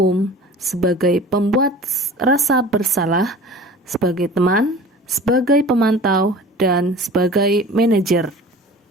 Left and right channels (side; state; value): both; normal; correlation 0.41